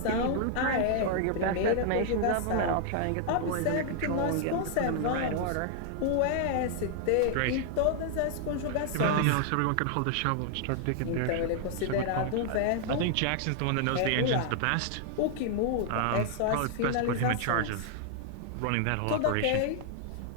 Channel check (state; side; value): different; both; correlation 0.00